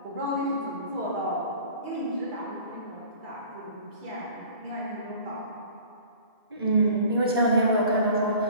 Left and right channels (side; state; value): both; inverted; correlation -0.46